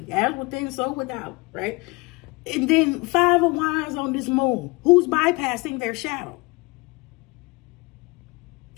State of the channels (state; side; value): quieter; right; 25.5 dB